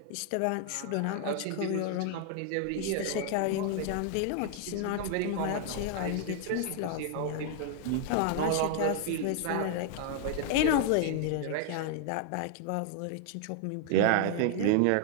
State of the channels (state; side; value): different; both; correlation 0.00